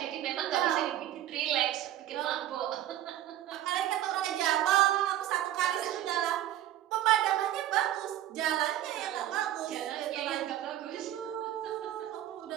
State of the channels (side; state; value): left; quieter; 12.7 dB